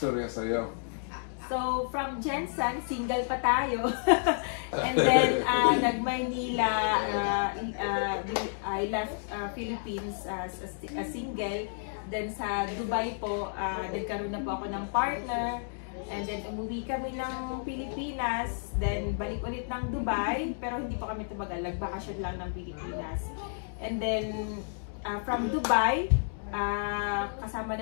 sa'yo? So, from Jensen, single pa tayo. And then, nag-Maynila, I left Philippines as a single. Then sa Dubai po, nagkaroon na po ako ng partner. And then, umuwi kami ng Pilipinas. Then, balik ulit ng Dubai. Pero hindi pa kami tumagal. Nagbakasyon lang ng Pilipinas. And then, from Dubai, kasama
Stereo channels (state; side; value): silent; right; digital silence